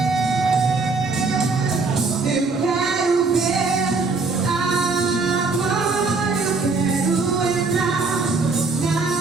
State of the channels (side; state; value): left; quieter; 4.0 dB